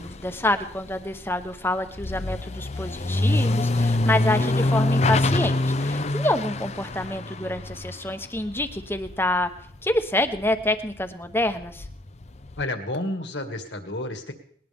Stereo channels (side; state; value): both; normal; correlation 0.71